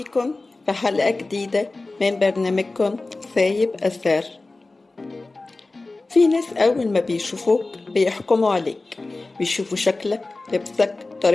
في حلقة جديدة من برنامجكم سايب أثر. في ناس أول ما بيشوفوك بيحكموا عليك، بيشوفوا شكلك، لبسك،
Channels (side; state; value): right; quieter; 3.3 dB